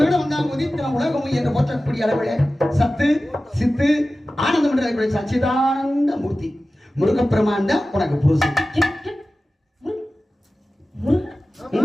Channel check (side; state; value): both; normal; correlation 0.96